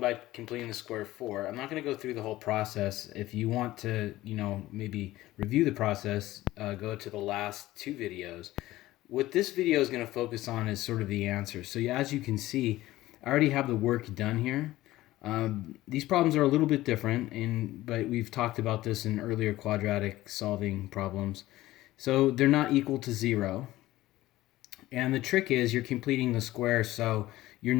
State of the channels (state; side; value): quieter; right; 16.5 dB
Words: completing the square of 4. I'm not going to go through the whole process. If you want to, maybe review the process, go to the last two videos. What this video is going to focus on is sort of the answer. So yeah, as you can see, I already have the work done here. These problems are a little bit different, but we've talked about this in earlier quadratic solving problems. So they're not equal to 0. And the trick is you're completing the square, so you're